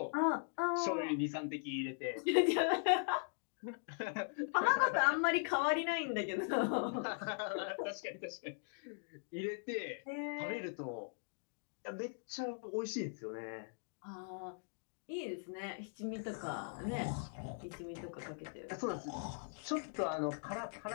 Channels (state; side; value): silent; right; digital silence